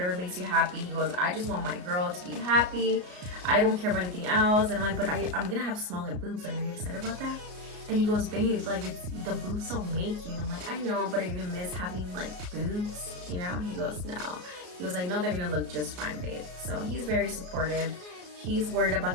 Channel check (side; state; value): left; late; 33 ms